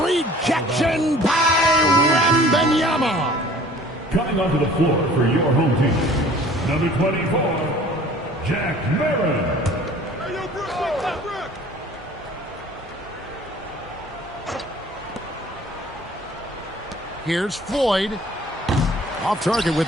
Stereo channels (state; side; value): normal; both; correlation 0.50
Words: rejection by Wembanyama. Coming onto the floor for your home team, number 24, Jack Marin. Hey, yo, Brook, what's up, Brook? Here's Floyd. Off target with